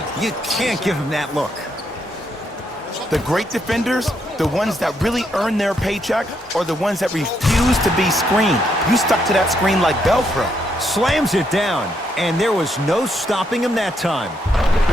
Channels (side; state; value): both; normal; correlation 0.76